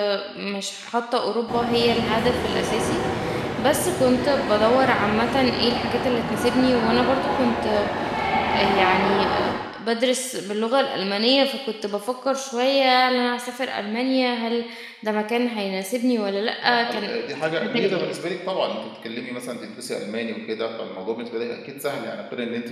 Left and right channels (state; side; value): identical; both; correlation 1.00